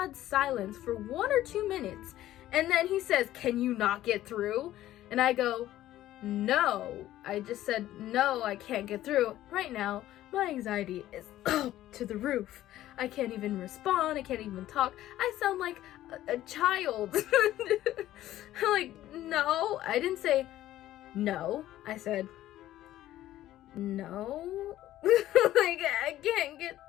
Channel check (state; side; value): quieter; right; 14.0 dB